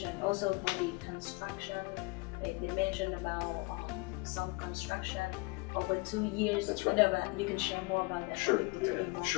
also for the construction. They mentioned about some construction over 2 years. That's right. You know, but you can share more about that. Sure.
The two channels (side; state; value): right; quieter; 26.8 dB